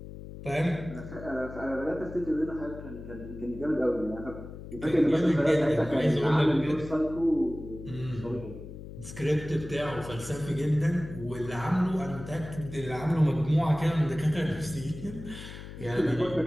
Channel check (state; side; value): noise; left; hum, 12 dB below the sound